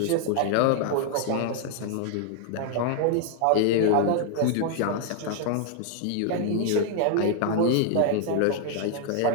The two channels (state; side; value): different; both; correlation 0.00